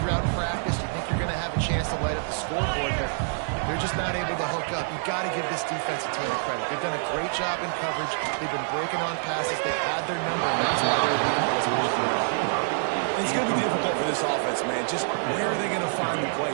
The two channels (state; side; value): silent; left; digital silence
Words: practice. You think you're going to have a chance to light up the scoreboard, but they're just not able to hook up. You got to give this defense a ton of credit. They've done a great job in coverage. They've been breaking on passes. They've had their number, and that's why they're leading by as much as they are. It's going to be difficult for this offense, man. Just where are they going to find the